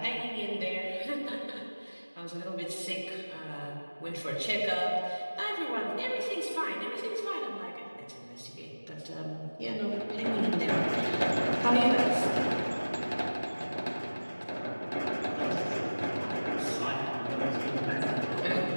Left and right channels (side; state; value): both; inverted; correlation -1.00